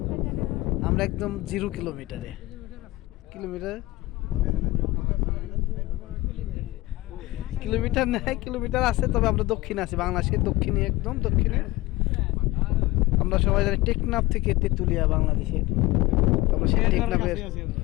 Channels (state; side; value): quieter; right; 19.5 dB